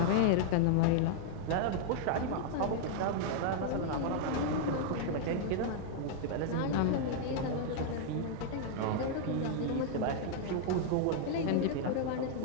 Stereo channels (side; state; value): both; different; correlation -0.01